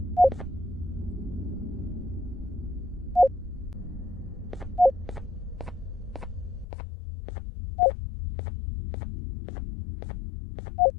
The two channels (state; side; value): drops out; right; at 6.7 s